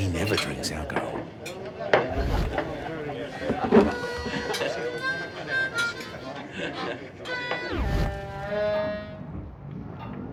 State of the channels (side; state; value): both; identical; correlation 1.00